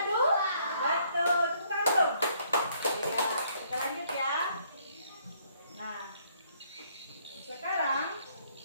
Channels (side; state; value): both; inverted; correlation -0.67